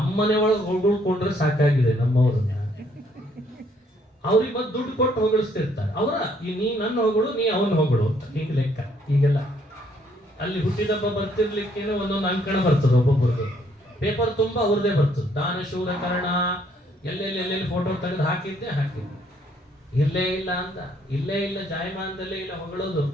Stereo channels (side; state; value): both; normal; correlation 0.67